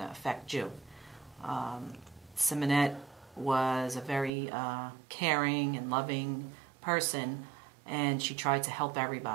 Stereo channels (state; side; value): drops out; left; at 4.3 s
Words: affect you. Simonette was a very caring and loving person, and she tried to help